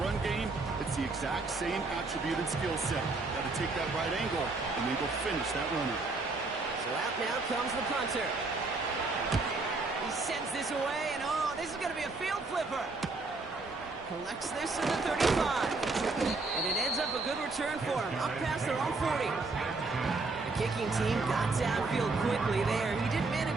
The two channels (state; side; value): quieter; left; 3.6 dB